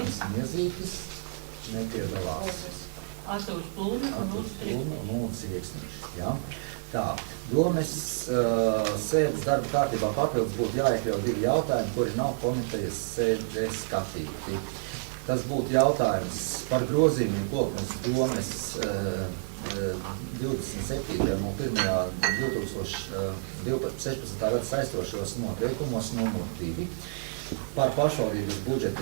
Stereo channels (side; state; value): left; silent; digital silence